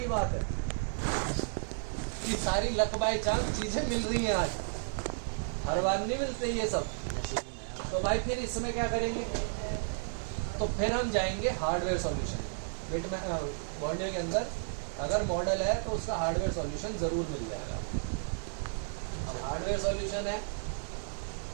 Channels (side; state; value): left; silent; digital silence